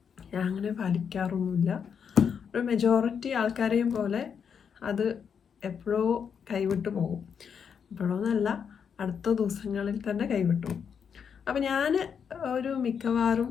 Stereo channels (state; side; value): quieter; right; 7.1 dB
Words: ഞാൻ അങ്ങനെ പാലിക്കാറൊന്നുമില്ല. ഒരു മെജോറിറ്റി ആൾക്കാരെയും പോലെ അത് എപ്പോഴോ കൈവിട്ടു പോകും. എപ്പോഴോന്നല്ല, അടുത്ത ദിവസങ്ങളിൽ തന്നെ കൈവിട്ടു പോകും. അപ്പം ഞാൻ ഒരു മിക്കവാറും